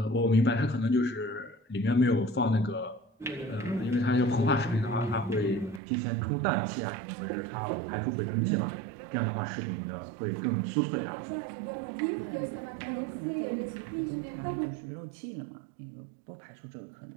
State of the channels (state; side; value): drops out; left; at 5.8 s